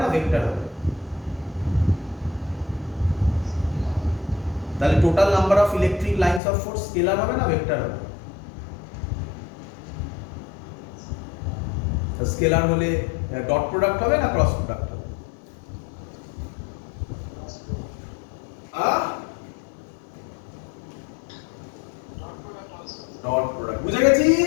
না ভেক্টর হবে? তাহলে total number of electric lines of force scalar হবে না ভেক্টর হবে? স্কেলার হলে ডট প্রোডাক্ট হবে না ক্রস প্রোডাক্ট হবে? ডট প্রোডাক্ট, বুঝে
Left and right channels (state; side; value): drops out; right; at 6.4 s